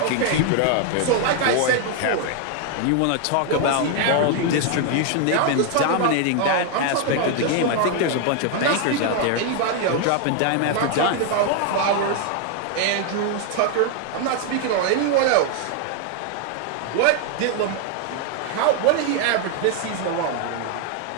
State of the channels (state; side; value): different; both; correlation 0.00